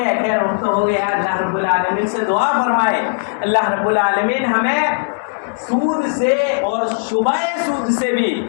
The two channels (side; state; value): right; silent; digital silence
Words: خیر وقت ہو گیا، اللہ رب العالمین سے دعا فرمائے اللہ رب العالمین ہمیں سود سے اور شبہ سود سے بھی،